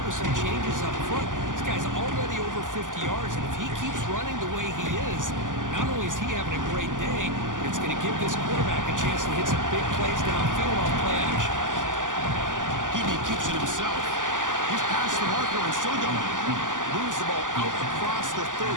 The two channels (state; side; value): late; left; 0.88 ms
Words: with some changes up front. This guy's already over 50 yards, and if he keeps running the way he is, not only is he having a great day, but it's going to give this quarterback a chance to hit some big plays downfield on play action. He keeps it himself. He's past the marker and still going. Moves the ball out across the 30.